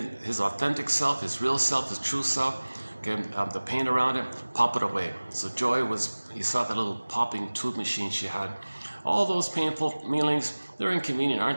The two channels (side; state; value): both; inverted; correlation -1.00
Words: his authentic self, his real self, his true self, okay, the pain around it, pop it away. So Joy he saw that little popping tube machine she had. All those painful feelings, they're inconvenient,